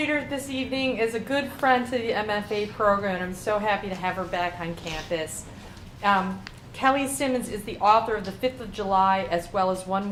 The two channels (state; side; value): identical; both; correlation 1.00